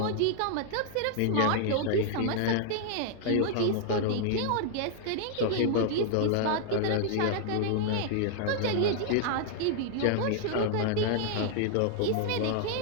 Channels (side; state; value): both; different; correlation 0.00